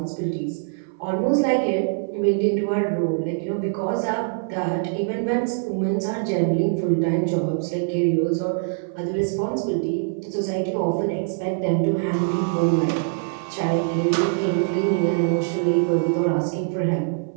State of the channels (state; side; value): silent; left; 56 dB below the other